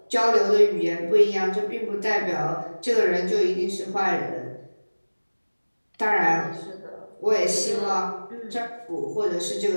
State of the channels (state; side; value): inverted; both; correlation -1.00